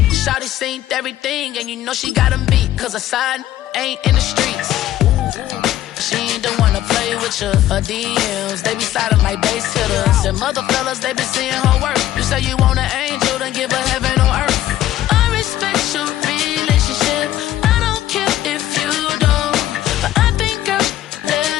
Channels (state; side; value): quieter; right; 13.3 dB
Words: Shawty seen everything, and you know she got them beat. Cause her side ain't in the streets. She ain't the one to play with you. Her DMs, they be sliding like base hitters. And mother fellas, they been seeing her work. You say you want an angel, then give her